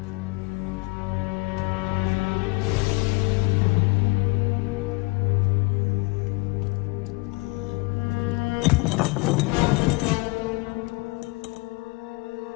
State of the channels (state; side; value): quieter; right; 26.0 dB